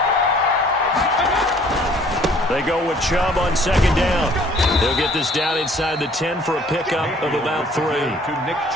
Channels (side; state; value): both; normal; correlation 0.57